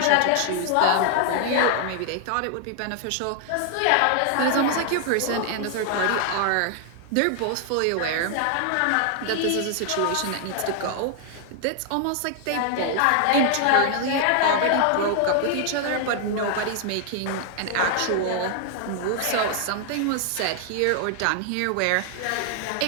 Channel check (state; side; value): different; both; correlation 0.00